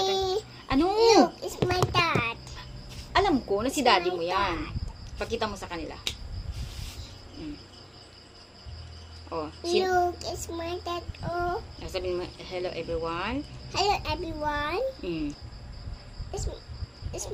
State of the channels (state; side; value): identical; both; correlation 1.00